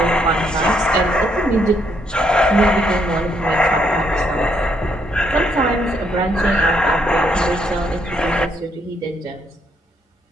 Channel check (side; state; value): both; normal; correlation 0.73